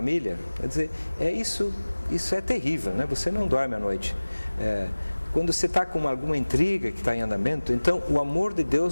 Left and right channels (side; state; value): both; inverted; correlation -1.00